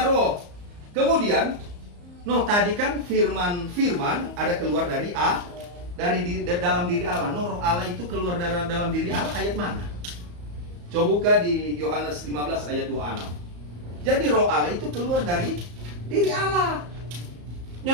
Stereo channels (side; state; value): left; late; 34 ms